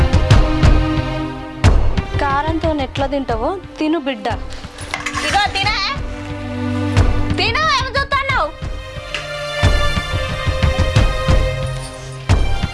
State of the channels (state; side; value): identical; both; correlation 1.00